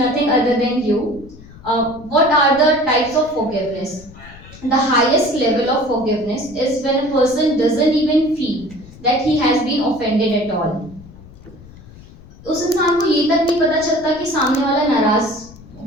other than you. What are the types of forgiveness? The highest level of forgiveness is when a person doesn't even feel that he has been offended at all. उस इंसान को ये तक नहीं पता चलता कि सामने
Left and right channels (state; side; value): noise; left; rumble, 20 dB below the sound